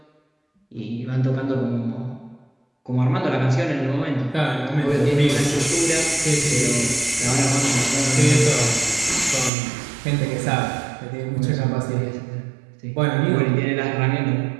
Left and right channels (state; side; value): drops out; left; at 9.5 s